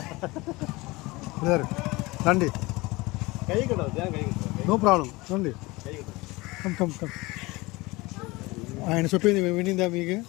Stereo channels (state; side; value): quieter; right; 22.4 dB